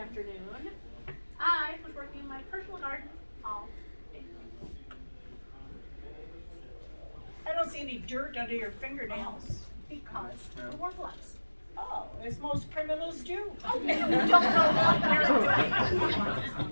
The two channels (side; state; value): both; inverted; correlation -1.00